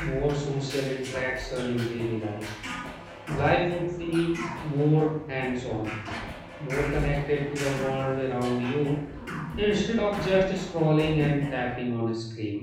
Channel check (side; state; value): both; identical; correlation 1.00